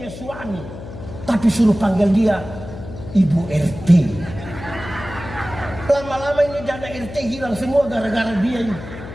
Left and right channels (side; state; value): left; noise; hum, 12 dB below the sound